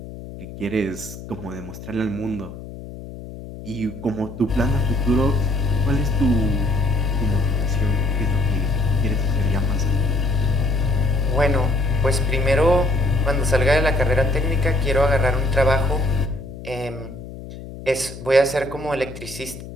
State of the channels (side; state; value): left; noise; hum, 13 dB below the sound